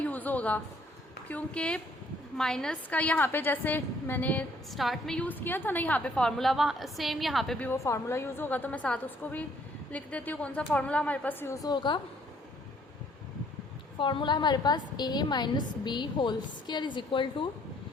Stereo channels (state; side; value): normal; both; correlation 0.63